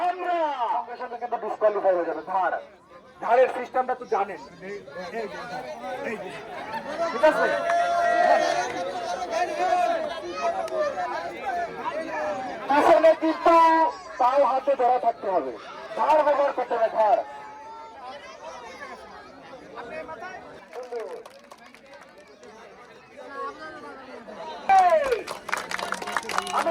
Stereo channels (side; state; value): both; identical; correlation 1.00